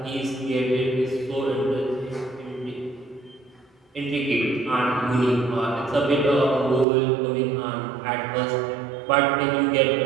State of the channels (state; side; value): drops out; left; at 6.9 s